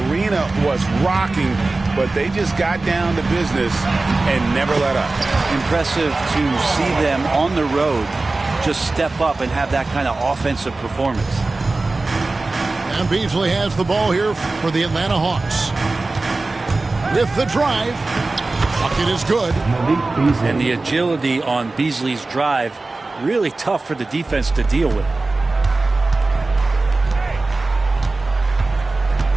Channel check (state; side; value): quieter; left; 3.3 dB